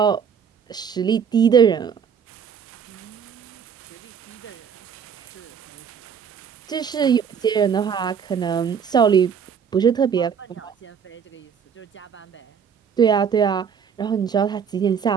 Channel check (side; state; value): left; quieter; 7.2 dB